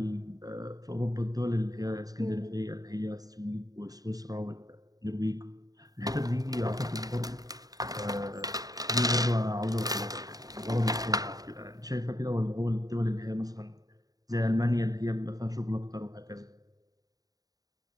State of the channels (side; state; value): left; late; 0.18 ms